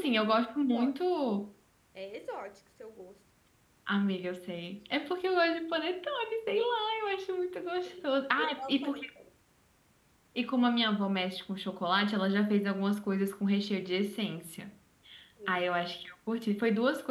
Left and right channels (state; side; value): identical; both; correlation 1.00